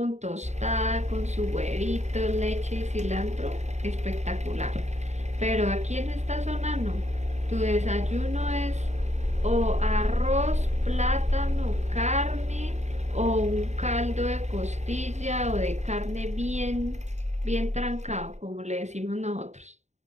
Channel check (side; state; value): left; late; 0.33 ms